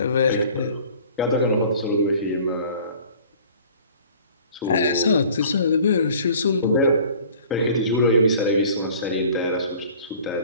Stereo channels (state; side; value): inverted; both; correlation -0.49